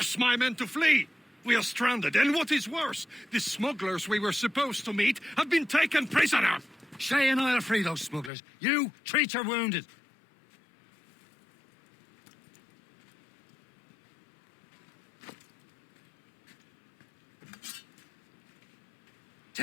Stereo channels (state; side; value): drops out; right; at 8.3 s